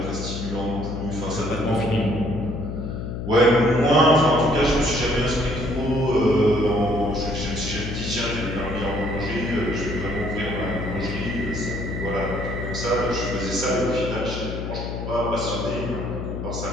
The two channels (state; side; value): noise; left; hum, 5 dB below the sound